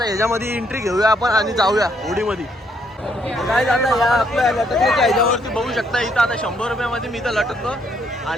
ह्याच्यामध्ये एंट्री घेऊया आपण आणि जाऊया होडीमध्ये काय आता या आपल्या लटकण्याच्या ह्याच्यावरती बघू शकता इथं आता 100 रुपयामध्ये मी इथं लटकतो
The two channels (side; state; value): both; normal; correlation 0.71